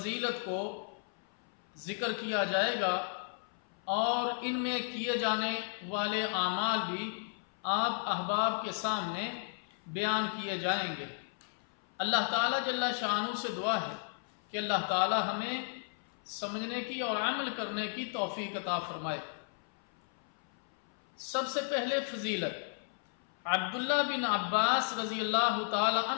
کو ذکر کیا جائے گا اور ان میں کیے جانے والے اعمال بھی آپ احباب کے سامنے بیان کیے جائیں گے۔ اللہ تعالیٰ جل شانہ سے دعا ہے کہ اللہ تعالیٰ ہمیں سمجھنے کی اور عمل کرنے کی توفیق عطا فرمائے۔ سب سے پہلے فضیلت عبداللہ بن عباس رضی اللہ تعالی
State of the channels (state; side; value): silent; right; 55 dB below the other